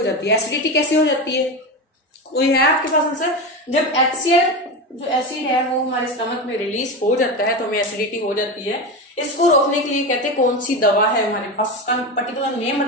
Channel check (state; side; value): normal; both; correlation 0.20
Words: जाती है। एसिडिटी कैसे हो जाती है, कोई है आपके पास आंसर? जब HCl जो एसिड है वो हमारे स्टमक में रिलीज हो जाता है तो हमें एसिडिटी हो जाती है। इसको रोकने के लिए कहते हैं कौन सी दवा है हमारे पास, उसका पर्टिकुलर नेम